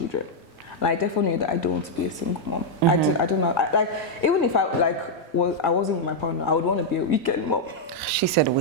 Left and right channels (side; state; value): both; normal; correlation -0.02